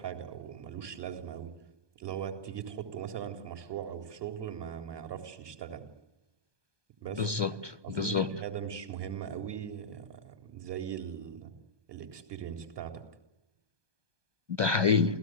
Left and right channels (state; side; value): late; left; 1.2 ms